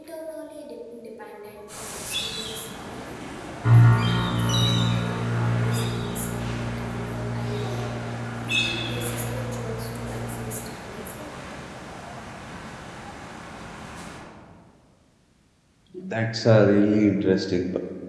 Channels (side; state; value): both; identical; correlation 1.00